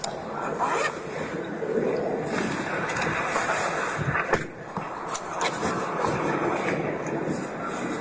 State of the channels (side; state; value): both; identical; correlation 1.00